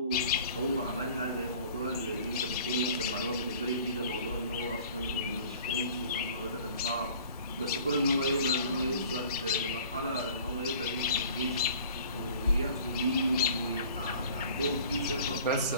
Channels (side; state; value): both; inverted; correlation -0.48